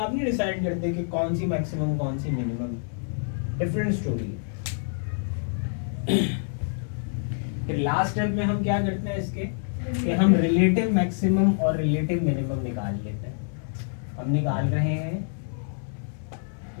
नहीं डिसाइड करते कि कौन सी मैक्सिमम कौन सी मिनिमम, डिफरेंट स्टोरी है। फिर लास्ट स्टेप में हम क्या करते हैं, इसके कि हम रिलेटिव मैक्सिमम और रिलेटिव मिनिमम निकाल लेते हैं। हम निकाल रहे हैं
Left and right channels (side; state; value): right; silent; digital silence